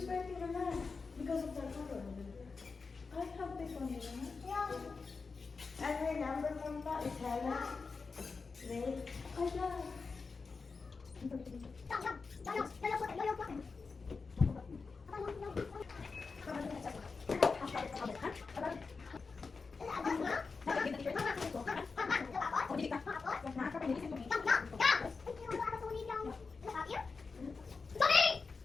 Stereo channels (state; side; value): quieter; right; 4.6 dB